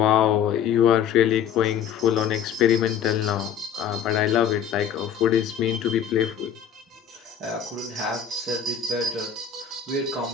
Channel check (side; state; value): right; quieter; 8.3 dB